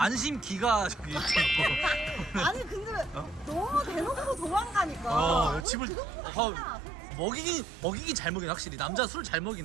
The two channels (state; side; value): drops out; left; at 5.7 s